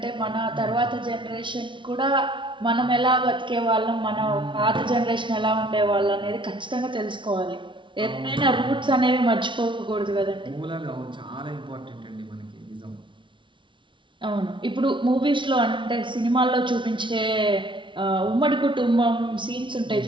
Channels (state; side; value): late; left; 0.24 ms